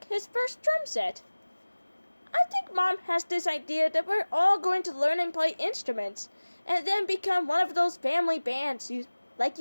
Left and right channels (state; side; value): inverted; both; correlation -1.00